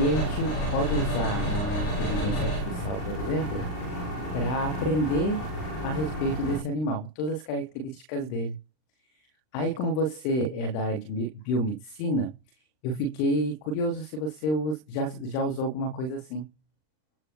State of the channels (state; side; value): late; right; 39 ms